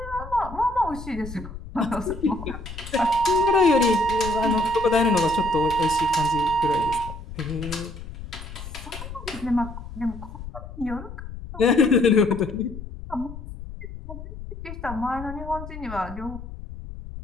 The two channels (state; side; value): noise; left; rumble, 11 dB below the sound